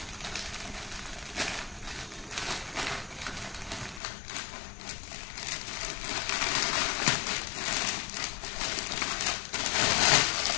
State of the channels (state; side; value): drops out; right; at 4.0 s